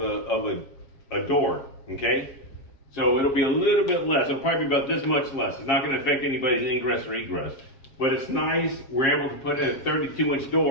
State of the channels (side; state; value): right; late; 7.4 ms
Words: a door, okay? So it'll be a little bit less. It'll probably be about this much less. It's not going to affect anybody's ingress or egress. But it's nice. We're able to put in a 32-inch